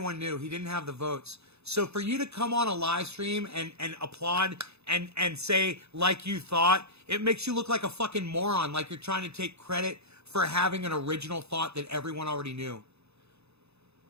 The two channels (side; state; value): left; late; 0.79 ms